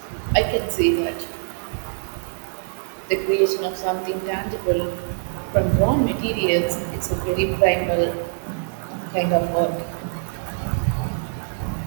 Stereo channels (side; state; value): left; silent; 63 dB below the other